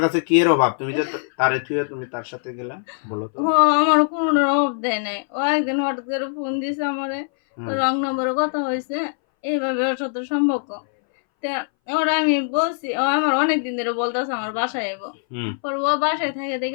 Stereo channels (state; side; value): silent; right; 61 dB below the other